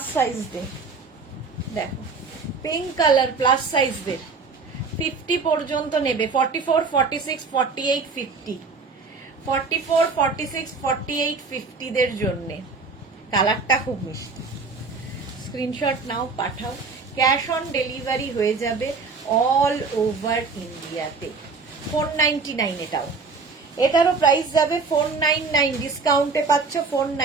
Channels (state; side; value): quieter; left; 4.5 dB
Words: সাইজ দে, দেখো পিঙ্ক কালার প্লাস সাইজ দে, 50 পর্যন্ত নেবে, 44, 46, 48, 50, 44, 46, 48, 50 দের জন্য। কালারটা খুব মিষ্টি। স্ক্রিনশট নাও, পাঠাও, ক্যাশ অন ডেলিভারি হয়ে যাবে অল ওভার ইন্ডিয়াতে। 499 এটাও, এটারও প্রাইস যাবে 499, ডিসকাউন্টে পাচ্ছ